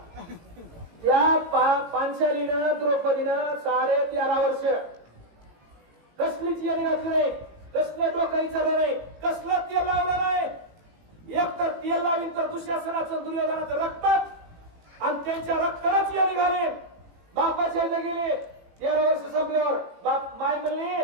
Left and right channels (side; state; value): left; late; 18 ms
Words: त्या पांचालीनं द्रौपदीनं 13.5 वर्ष कसलीच येणी घातली नाही, कसलं डोकं विचारलं नाही, कसलं तेल लावलं नाही. एक तर तेल लावीन तर दुःशासनाचं दुर्योधनाचं रक्तात, आणि त्यांच्या रक्तालाच येणी घालेन. बापाच्या इथे गेले 13 वर्ष संपल्यावर बाप माय म्हणली,